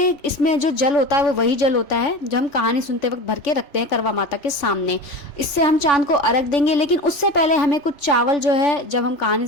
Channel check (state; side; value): late; right; 3.5 ms